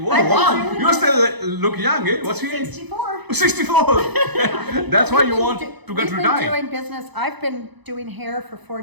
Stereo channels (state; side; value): late; left; 0.99 ms